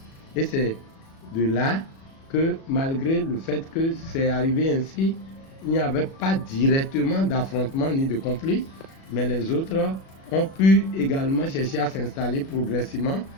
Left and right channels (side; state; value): right; late; 37 ms